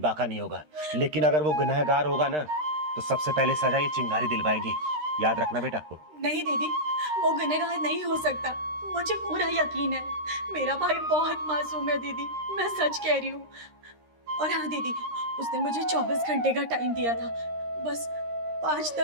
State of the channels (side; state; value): left; late; 13 ms